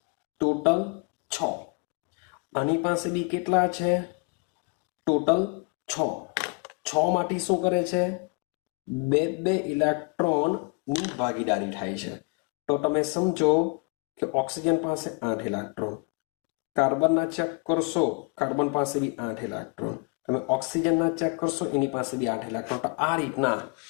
ટોટલ 6. આની પાસે બી કેટલા છે? ટોટલ 6. 6 માંથી શું કરે છે? 2 ઇલેક્ટ્રોનની ભાગીદારી થાય છે. તો તમે સમજો કે ઓક્સિજન પાસે 8 ઇલેક્ટ્રોન. કાર્બનના ચેક કરશો, કાર્બન પાસે બી 8 ઇલેક્ટ્રોન. તમે ઓક્સિજનના ચેક કરશો, એની પાસે બી 8 ઇલેક્ટ્રોન. તો આ રીતના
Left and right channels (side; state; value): right; quieter; 33.2 dB